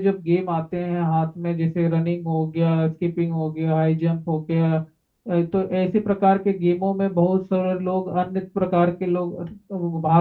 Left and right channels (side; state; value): both; identical; correlation 1.00